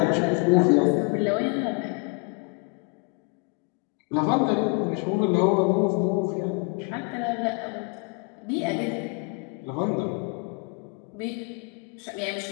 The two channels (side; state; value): right; quieter; 31.5 dB